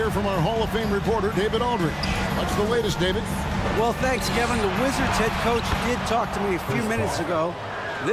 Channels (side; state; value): both; identical; correlation 1.00